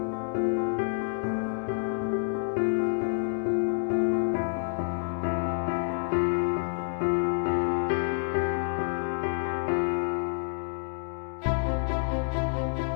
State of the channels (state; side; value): silent; right; digital silence